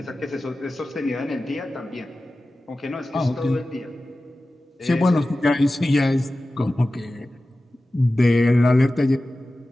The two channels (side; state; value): both; normal; correlation 0.95